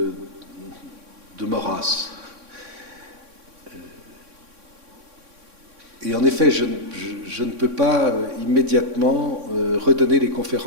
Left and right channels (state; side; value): late; left; 3.6 ms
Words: Maurras. Et en effet, je ne peux pas immédiatement redonner les